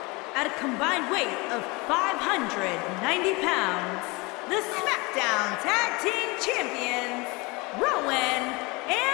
At a combined weight of 590 pounds, the SmackDown Tag Team Champions, Rowan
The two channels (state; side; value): quieter; right; 25.9 dB